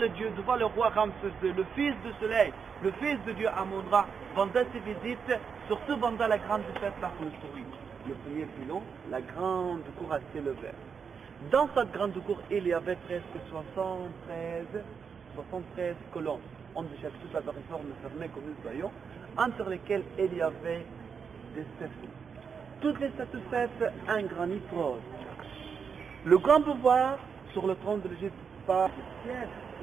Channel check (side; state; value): left; quieter; 6.3 dB